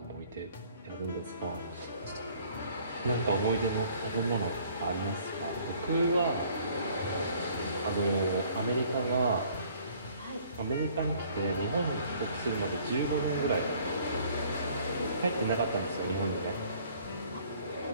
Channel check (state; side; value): inverted; both; correlation -0.57